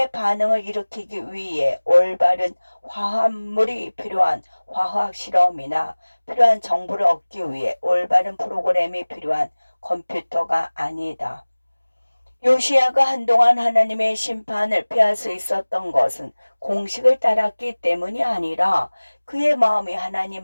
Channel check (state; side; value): inverted; both; correlation -1.00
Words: 반응을 일으키기 위해 올바른 화합물이 필요한 화학 실험이나 필요한 정보를 얻기 위해 올바른 프로그램이 필요한 컴퓨터가 아니다. 요시야가 한동안 하나님의 심판을 피할 수 있었던 것은 공식을 따랐기 때문이 아니라 그의 마음이